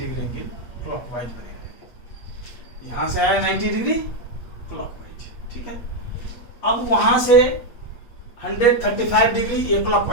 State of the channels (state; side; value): late; right; 8.5 ms